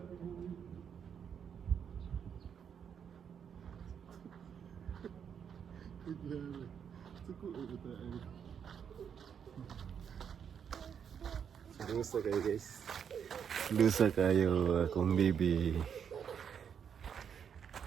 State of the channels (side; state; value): left; quieter; 7.7 dB